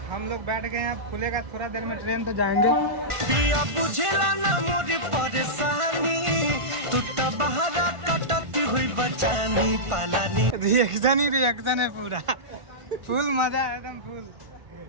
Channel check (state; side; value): late; left; 1.5 ms